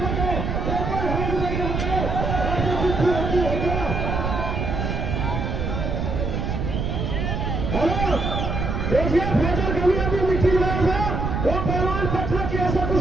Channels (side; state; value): right; noise; rumble, 1 dB below the sound